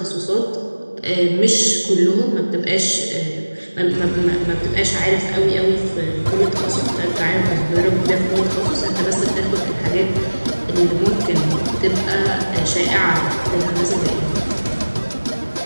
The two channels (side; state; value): both; inverted; correlation -1.00